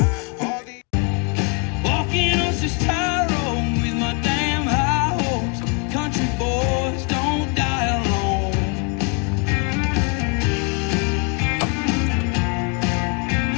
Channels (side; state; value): right; quieter; 34.2 dB